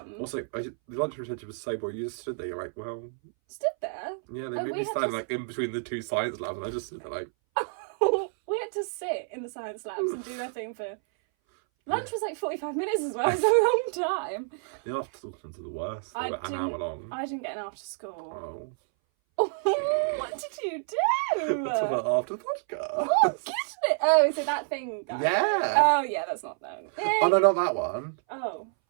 Also, the lunchtime detention was so boring. You just stood there. You're like, well, Stood there. yeah. They Oh, made we me had stand to- like in between the 2 science labs, and I just stood there like, Oh had to sit in the science labs and do nothing for... Lunch was like 45 minutes as well. It was a long time. The after school ones are the worst. They were an hour long. I didn't get an after school. Oh. What did you do? Let's talk about after the podcast. Oh, get it. Oh, is it that thing? Yeah. Oh, yeah, that's not that. Oh, no, not that one. Oh.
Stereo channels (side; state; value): left; silent; 59 dB below the other